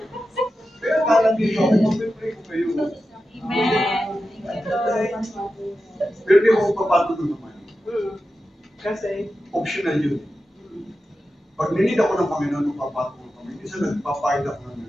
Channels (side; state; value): both; normal; correlation 0.91